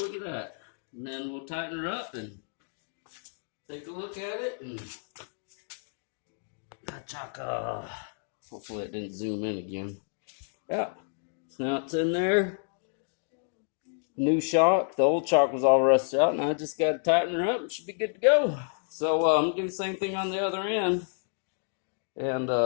at that. And then we'll tighten her up and take a look at it and chaka. Hopefully it didn't zoom in again. Yeah, so now it's in there. New shock. The old shock was all rusted out, and I just got to tighten her up and should be good to go. So I'm going to do the same thing on the other end. And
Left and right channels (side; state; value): right; silent; digital silence